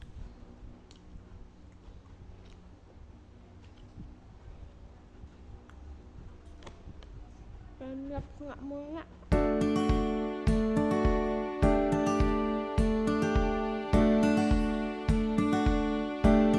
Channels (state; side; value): identical; both; correlation 1.00